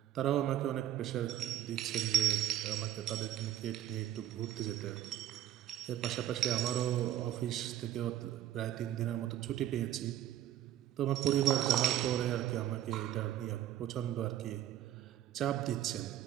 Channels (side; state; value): left; quieter; 12.3 dB